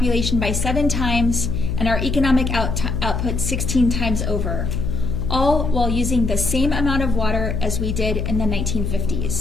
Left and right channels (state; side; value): noise; left; hum, 1 dB below the sound